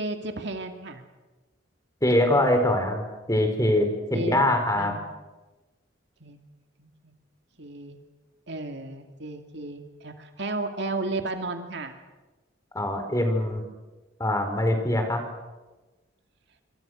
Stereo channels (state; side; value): normal; both; correlation 0.51